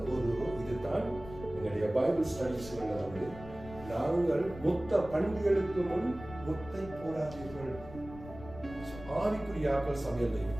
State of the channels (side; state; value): left; noise; rumble, 15 dB below the sound